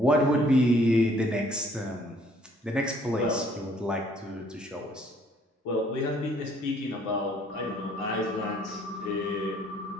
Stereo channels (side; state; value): both; normal; correlation 0.62